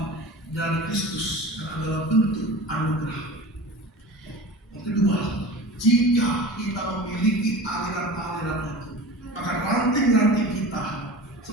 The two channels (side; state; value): both; normal; correlation 0.35